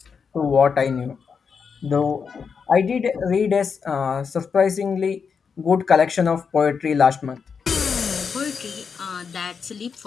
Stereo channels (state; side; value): quieter; right; 6.0 dB